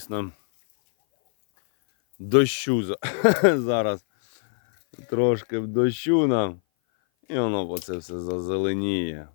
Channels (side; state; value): right; silent; 58 dB below the other